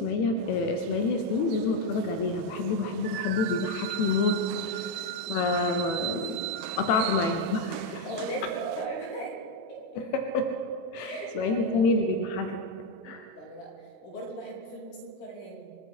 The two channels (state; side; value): late; right; 18 ms